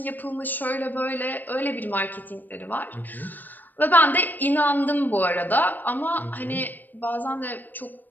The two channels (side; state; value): right; late; 0.088 ms